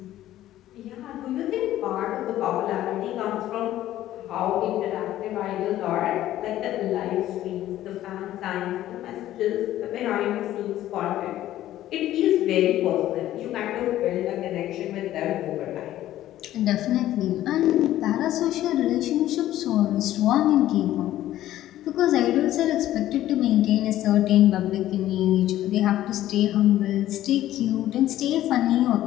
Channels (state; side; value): quieter; right; 13.6 dB